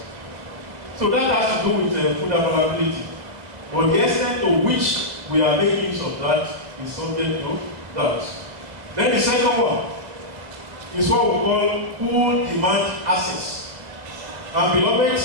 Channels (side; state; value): left; late; 2.0 ms